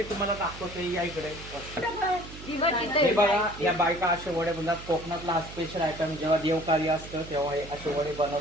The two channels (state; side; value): noise; right; hum, 14 dB below the sound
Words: तुम्हाला दाखवतो या इकडे. हे बघा, या बायका असे वडे बनवतात. कोकणातला हा स्पेशल आयटम जेव्हा देवकार्य असतं तेव्हा हे असे वडे